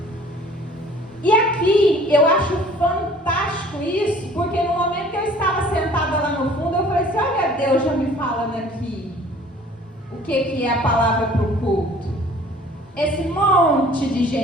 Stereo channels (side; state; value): both; normal; correlation 0.51